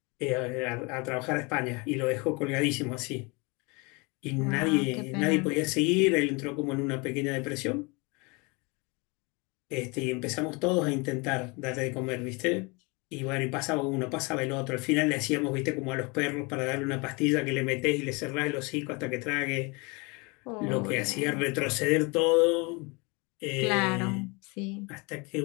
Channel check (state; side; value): quieter; right; 28.6 dB